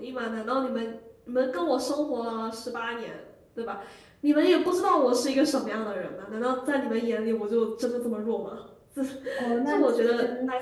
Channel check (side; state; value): both; identical; correlation 1.00